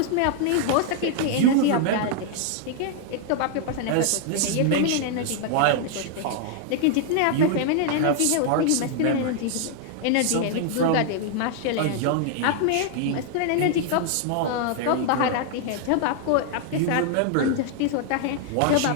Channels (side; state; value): both; different; correlation 0.00